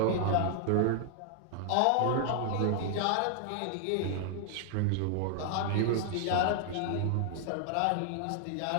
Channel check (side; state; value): both; different; correlation 0.00